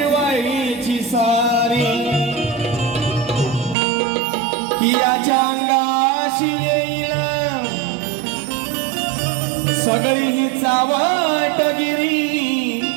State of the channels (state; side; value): drops out; left; at 3.8 s